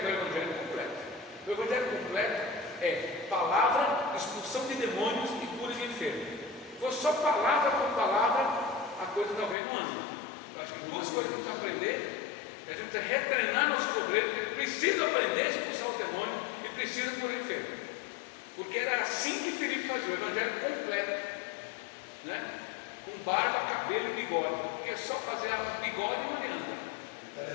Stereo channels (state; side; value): drops out; right; at 9.6 s